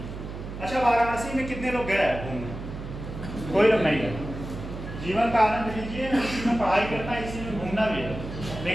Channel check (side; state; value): right; noise; hum, 9 dB below the sound